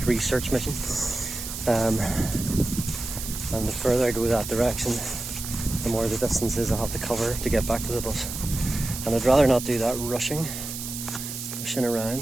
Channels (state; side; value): noise; right; hiss, 7 dB below the sound